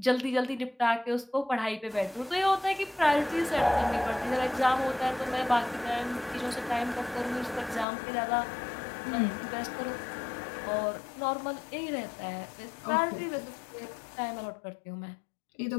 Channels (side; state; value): right; drops out; at 7.9 s